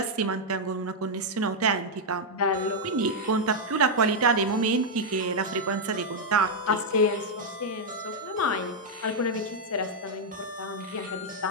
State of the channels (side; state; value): both; normal; correlation -0.02